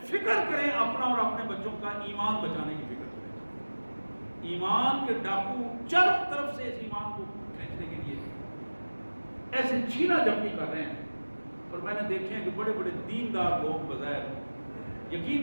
فکر کریں اپنا اور اپنے بچوں کا ایمان بچانے کی فکر کریں. ایمان کے ڈاکو چاروں طرف سے اس ایمان کو کھینچنے کے لیے ایسے چھینا جھپٹی کر رہے ہیں. اور میں نے دیکھے ہیں کہ بڑے بڑے دیندار لوگ بظاہر,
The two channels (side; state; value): both; inverted; correlation -1.00